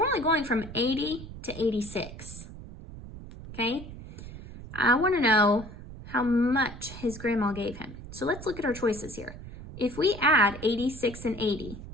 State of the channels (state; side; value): noise; right; rumble, 13 dB below the sound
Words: only going from 80 to 86, okay? I want to know how much his grandma gave him. So let's look at our choices here. If we add 86 and 80,